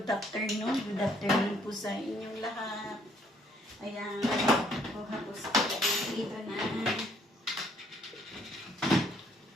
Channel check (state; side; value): normal; both; correlation 0.66